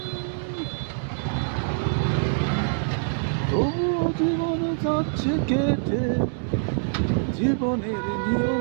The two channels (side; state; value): left; silent; digital silence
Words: তবুও জীবন যাচ্ছে কেটে, জীবনের